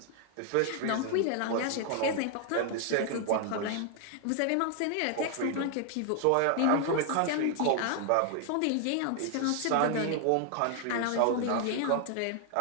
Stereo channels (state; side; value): different; both; correlation 0.00